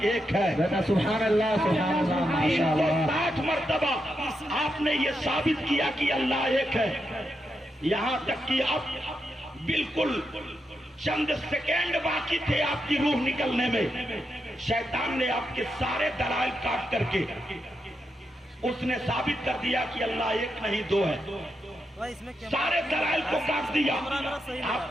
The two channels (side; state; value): both; normal; correlation 0.85